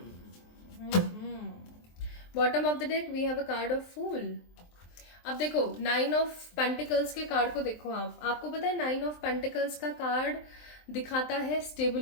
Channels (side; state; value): right; late; 23 ms